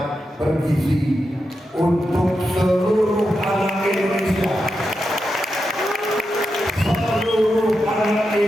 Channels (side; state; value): both; normal; correlation 0.88